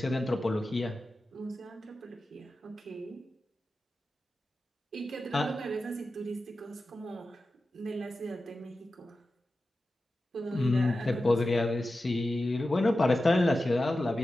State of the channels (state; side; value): normal; both; correlation 0.93